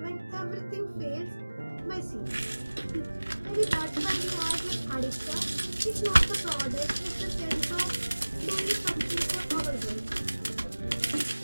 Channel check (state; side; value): inverted; both; correlation -1.00